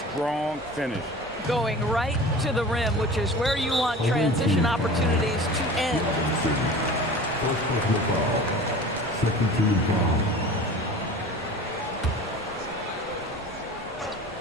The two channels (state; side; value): normal; both; correlation 0.38